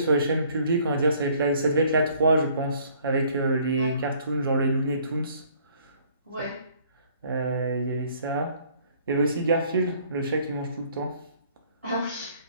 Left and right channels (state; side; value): inverted; both; correlation -0.60